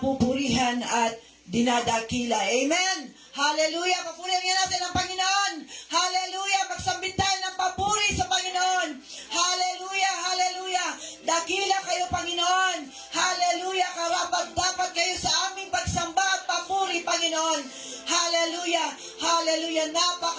at dinadakila. Amen. Hallelujah. Papurihan nga natin ang Panginoon. Hallelujah. Magsambit tayo ng papuri sa Panginoon. Hallelujah. Hallelujah. Dakila kayo, Panginoon. Hallelujah. Karapat-dapat kayo sa aming pagsamba at papuri, Panginoon. Hallelujah. Hallelujah.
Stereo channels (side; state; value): both; identical; correlation 1.00